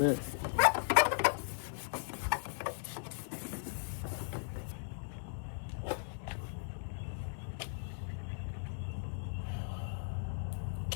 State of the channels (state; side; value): silent; right; digital silence